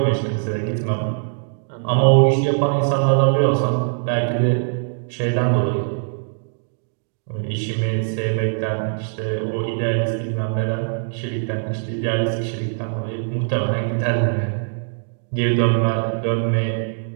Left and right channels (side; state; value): left; silent; digital silence